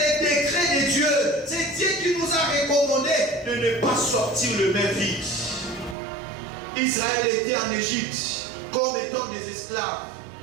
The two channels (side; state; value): left; drops out; at 6.0 s